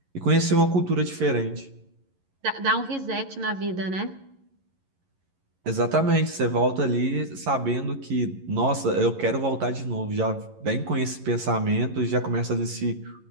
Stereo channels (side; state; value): left; late; 11 ms